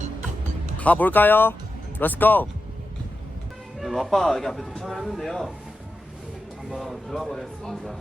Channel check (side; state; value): both; normal; correlation 0.90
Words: 가볼까요? 렛츠고! 네, 아빠 여기 앞에 도착을 했는데요. 한번 들어가 보겠습니다.